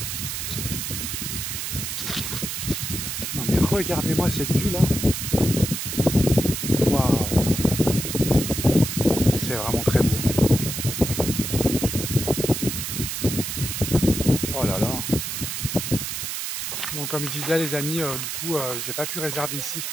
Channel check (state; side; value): noise; right; hiss, 4 dB below the sound